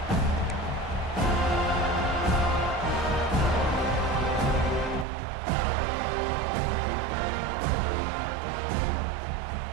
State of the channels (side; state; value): left; drops out; at 5.1 s